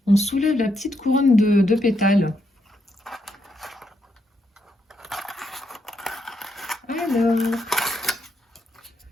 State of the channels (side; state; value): both; normal; correlation 0.79